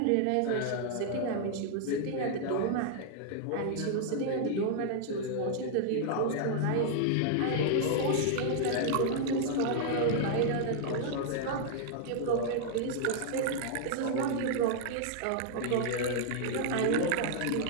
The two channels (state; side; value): different; both; correlation -0.01